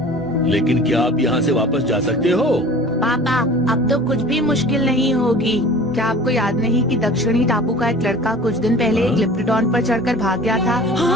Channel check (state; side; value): normal; both; correlation 0.42